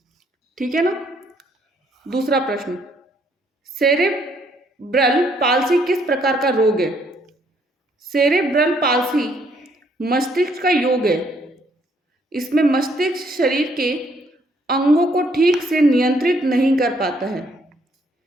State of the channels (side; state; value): both; normal; correlation 0.68